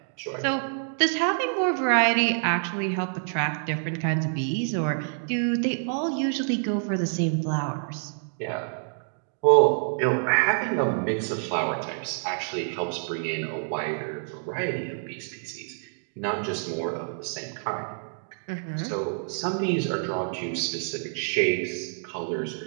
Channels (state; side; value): silent; left; digital silence